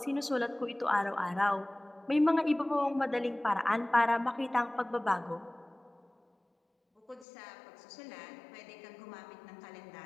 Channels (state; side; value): drops out; right; at 7.2 s